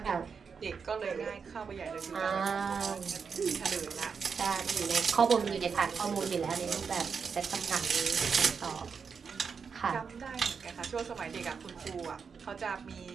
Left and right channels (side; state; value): left; quieter; 5.9 dB